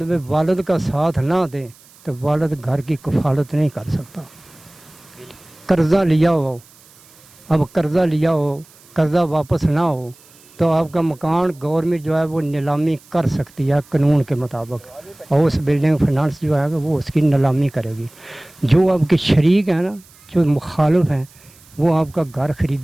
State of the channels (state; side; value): noise; right; hiss, 26 dB below the sound